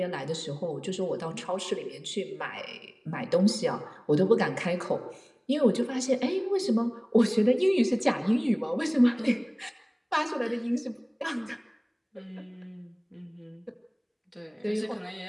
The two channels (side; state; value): both; identical; correlation 1.00